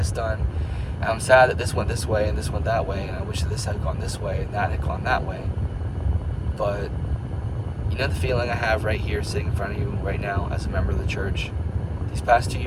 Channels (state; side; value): identical; both; correlation 1.00